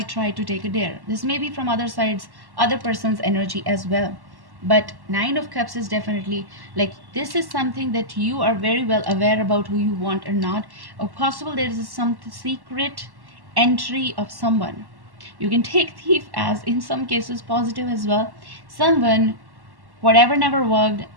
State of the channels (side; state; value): left; late; 1.1 ms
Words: try to take a dare. This may be from other sides, other person's energy as well. But 9 of Cups is definitely like, this is something that you are very well aware about who you want or not, or possible there is some secret entry of someone. You can take thief as in some cases positive as well. Someone, whatever never worked,